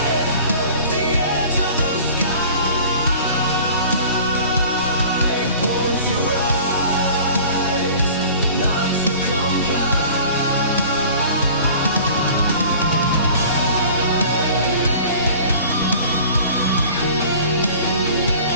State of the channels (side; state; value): both; inverted; correlation -0.45